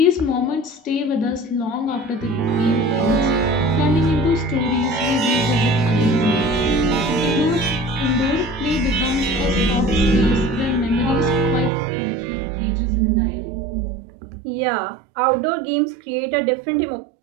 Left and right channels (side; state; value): left; drops out; at 11.7 s